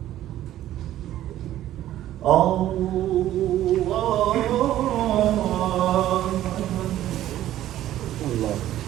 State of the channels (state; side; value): quieter; left; 13.1 dB